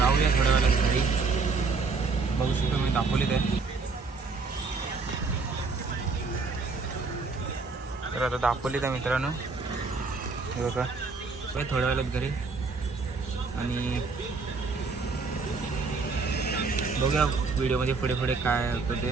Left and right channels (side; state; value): left; quieter; 4.4 dB